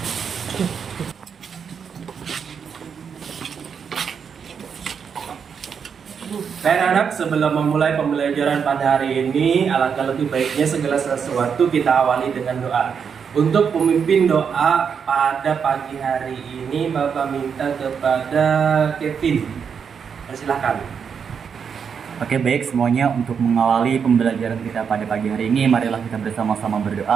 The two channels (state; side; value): quieter; left; 6.8 dB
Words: Baik anak, sebelum memulai pembelajaran pada hari ini, alangkah lebih baiknya segala sesuatu kita awali dengan doa. Untuk pemimpin doa pada pagi hari ini, Bapak minta kepada Kevin. Persilahkan. Oke, baik semuanya, untuk mengawali pembelajaran kita pada pagi hari ini, marilah kita bersama-sama